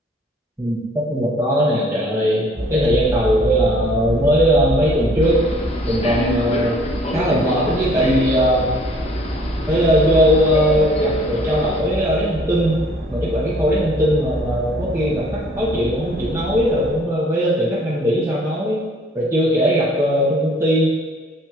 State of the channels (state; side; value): normal; both; correlation 0.56